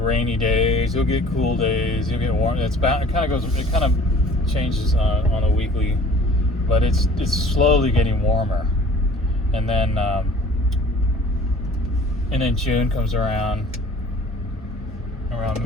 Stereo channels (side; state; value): both; normal; correlation 0.49